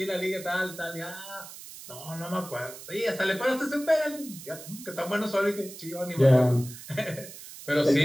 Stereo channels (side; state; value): right; noise; hiss, 14 dB below the sound